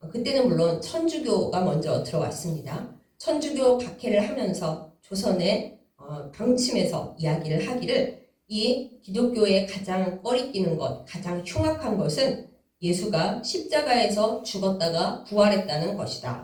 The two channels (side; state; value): both; identical; correlation 1.00